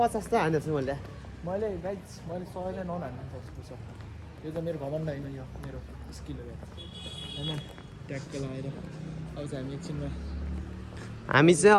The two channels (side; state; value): both; identical; correlation 1.00